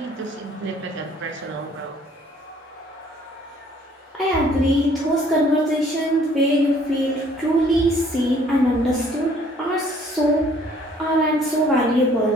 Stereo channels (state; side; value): normal; both; correlation 0.60